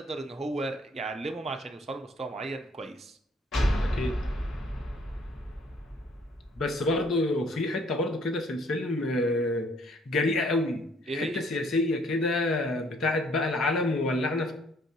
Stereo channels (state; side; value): normal; both; correlation 0.62